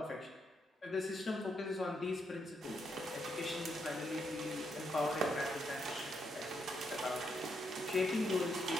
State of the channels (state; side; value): normal; both; correlation 0.78